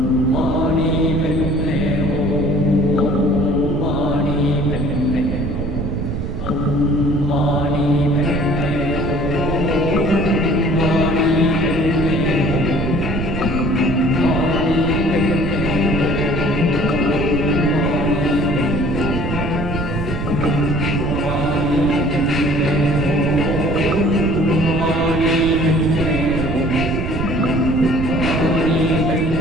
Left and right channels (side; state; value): right; noise; rumble, 3 dB below the sound